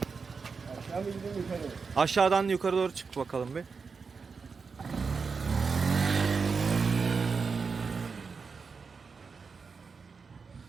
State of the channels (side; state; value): left; quieter; 5.1 dB